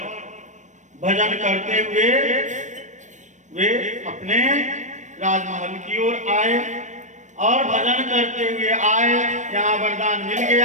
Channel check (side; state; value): left; late; 0.35 ms